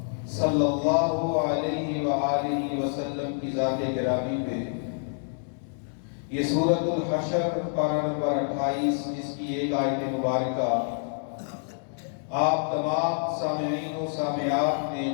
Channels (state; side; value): silent; right; digital silence